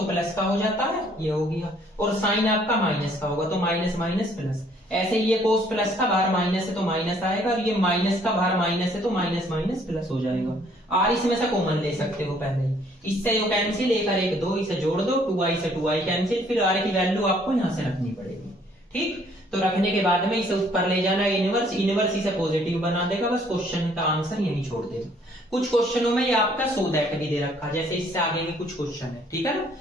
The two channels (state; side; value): normal; both; correlation 0.62